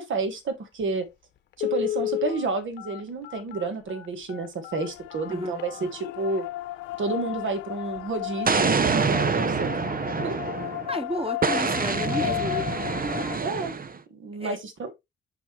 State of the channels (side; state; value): both; normal; correlation 0.17